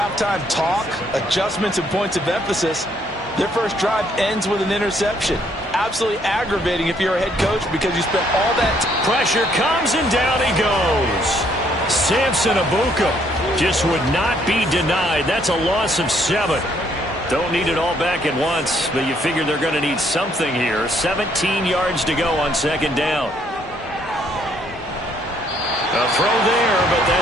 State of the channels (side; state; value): both; normal; correlation 0.68